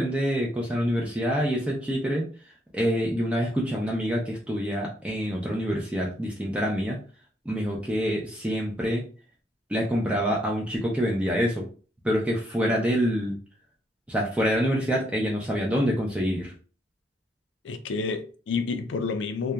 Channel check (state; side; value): normal; both; correlation 0.73